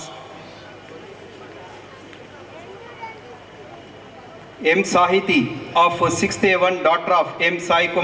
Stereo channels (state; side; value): identical; both; correlation 1.00